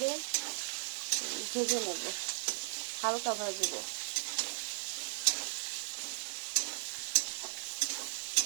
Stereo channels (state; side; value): silent; left; digital silence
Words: ভেজে নেব, হালকা ভাজবো।